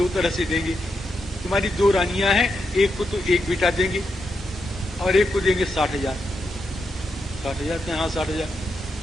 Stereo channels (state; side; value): normal; both; correlation 0.84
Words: तरह से देंगे, तुम्हारी दो रानियां हैं, एक को तो एक बेटा देंगे और एक को देंगे 60,000। 60,000? हाँ 60,000।